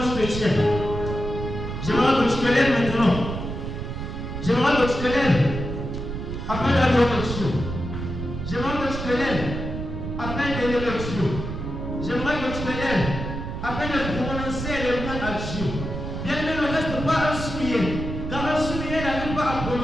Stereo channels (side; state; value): right; noise; rumble, 6 dB below the sound